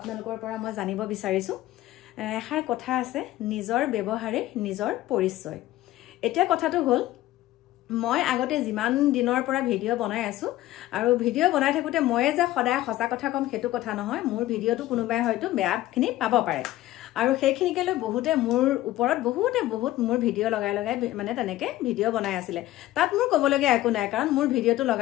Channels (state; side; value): quieter; right; 15.5 dB